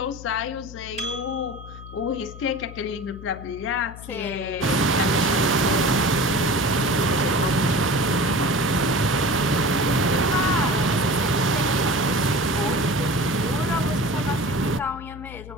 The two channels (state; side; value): noise; left; hum, 14 dB below the sound